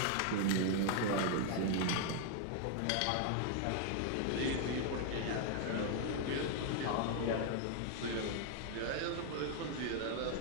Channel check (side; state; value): both; different; correlation 0.00